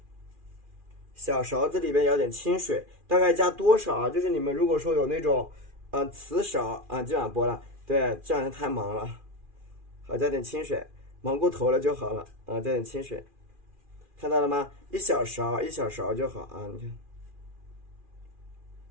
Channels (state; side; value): late; left; 2.4 ms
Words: 小勺子里边舀点清水，大概加多少啊？就是你们如果说有那种瓷勺啊，今晚剥了，对，这两天太忙了。好，加点清水，忙过头了就好了啊，加点清水，看到了吗？一小勺就好啊，你看。